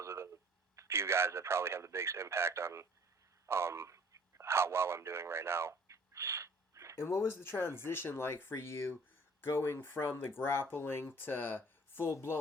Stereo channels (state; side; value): normal; both; correlation 0.53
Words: the few guys that probably have the biggest impact on how well I'm doing right now. And what was the transition like for you, going from the grappling to